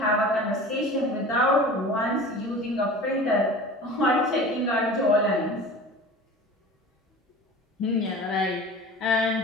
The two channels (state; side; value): normal; both; correlation 0.38